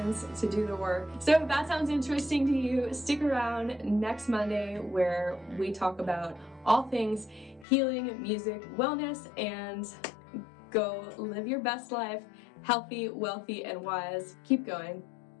to do the work. So if that sounds interesting to you, stick around next Monday where we talk about all things healing, music, wellness, and go live your best life, healthy, wealthy, and wise. Keep going.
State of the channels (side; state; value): right; drops out; at 7.7 s